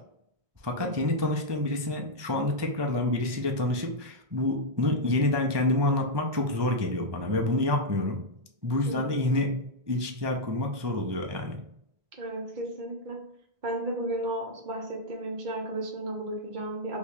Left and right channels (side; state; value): left; late; 1.2 ms